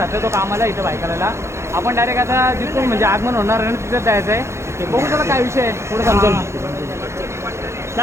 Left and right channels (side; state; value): left; late; 0.13 ms